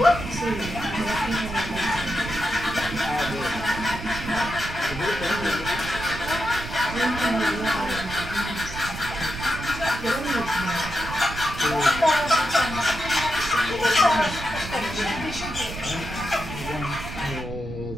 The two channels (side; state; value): right; noise; rumble, 10 dB below the sound